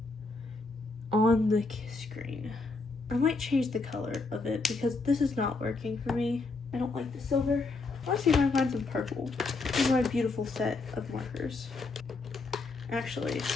on the screen. I might change the color of it because this is not working for me. I don't like the silver. Let's see if I can find some purple in my beautiful set of markers. Actually,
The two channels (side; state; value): right; quieter; 3.7 dB